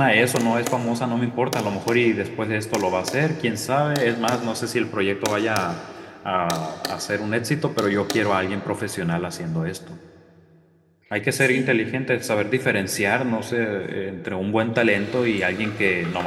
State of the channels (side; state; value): both; identical; correlation 1.00